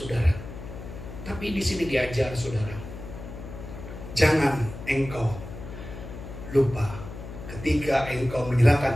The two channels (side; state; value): left; noise; hum, 11 dB below the sound